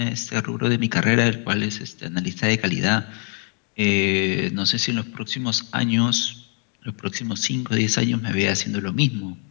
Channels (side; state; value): right; quieter; 39.9 dB